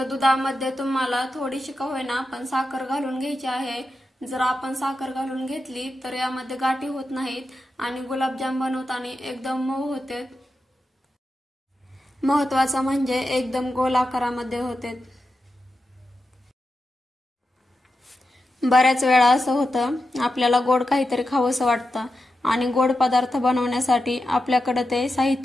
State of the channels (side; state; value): both; normal; correlation 0.89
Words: दुधामध्ये तुम्हाला थोडीशी का होईना पण साखर घालून घ्यायची आहे. जर आपण साखर घालून घेतली तर यामध्ये गाठी होत नाहीत आणि गुलाबजाम बनवताना एकदम मऊ होते. महत्वाचं म्हणजे एकदम गोल आकारामध्ये होते. बऱ्याच वेळा असं होतं, आपल्याला गोड काहीतरी खावंसं वाटतं आणि गोड पदार्थ बनवण्यासाठी आपल्याकडे ते